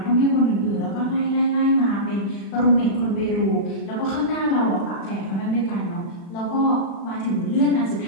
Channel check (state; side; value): late; right; 36 ms